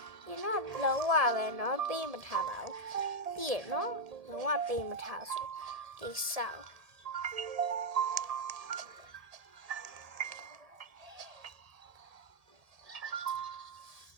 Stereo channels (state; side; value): late; left; 1.7 ms